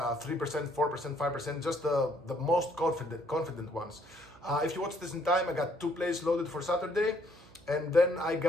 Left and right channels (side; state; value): right; noise; hum, 24 dB below the sound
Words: 4%, 5%, just the most confident ones. If you watch this in time, I got 2 plays loaded for Saturday. And then I